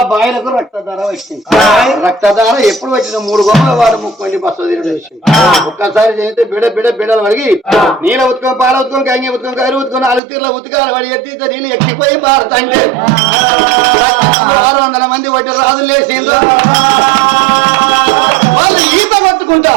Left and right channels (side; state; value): left; drops out; at 10.2 s